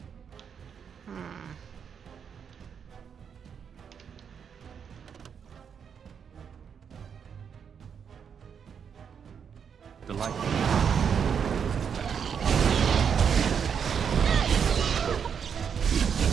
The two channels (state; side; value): quieter; left; 7.2 dB